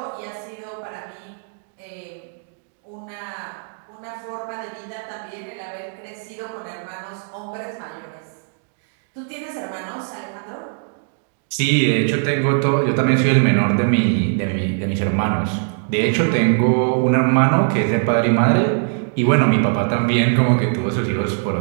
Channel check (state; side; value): silent; left; 64 dB below the other